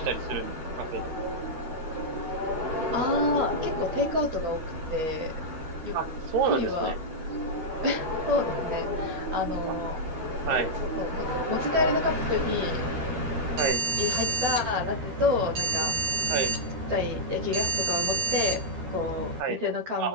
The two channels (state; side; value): late; left; 12 ms